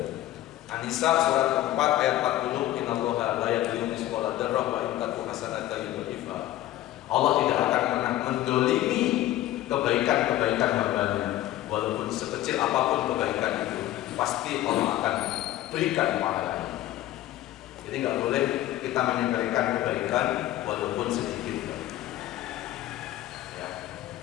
An-Nisa surat keempat ayat 40, innallaha la yadhlimu mithqala dzarrah wa in taku hasanatan yudhifha. Allah tidak akan pernah mendolimi kebaikan-kebaikan hamba-Nya. Walaupun sekecil apapun kebaikan itu, pasti Allah akan berikan pahalanya. Jadi nggak boleh kita menyepelekan kebaikan walaupun sedikit. Ya.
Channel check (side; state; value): right; quieter; 14.5 dB